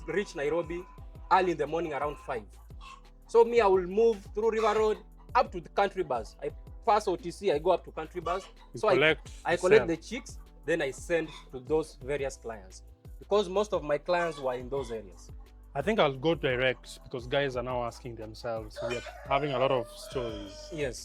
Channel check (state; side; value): identical; both; correlation 1.00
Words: reach Nairobi early in the morning around 5. So me, I will move through River Road up to the country bus. I pass OTC, I go up to country bus. So I collect the chicks, then I send to those various clients. Because most of my clients were in those areas. I think I'll go direct because guys are now asking themselves. We are having a lot of stories.